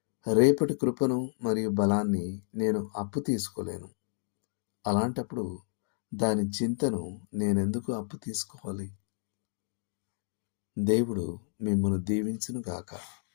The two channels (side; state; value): right; silent; digital silence